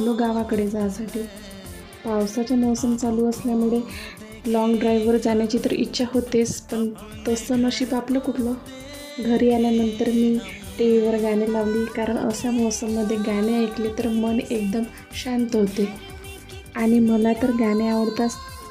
गावाकडे जायसाठी. पावसाचा मोसम चालू असल्यामुळे लाँग ड्राईव्हवर जाण्याची तर इच्छा होतेच, पण तसं नशीब आपलं कुठलं. घरी आल्यानंतर मी टी व्हीवर गाणे लावली, कारण अशा मोसममध्ये गाणे ऐकले तर मन एकदम शांत होते. आणि मला तर गाणे आवडतात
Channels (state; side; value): identical; both; correlation 1.00